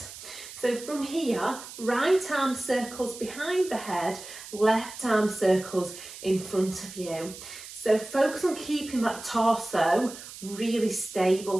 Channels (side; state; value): right; noise; hiss, 14 dB below the sound